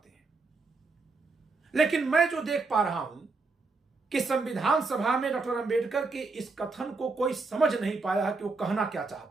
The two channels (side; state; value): left; quieter; 3.9 dB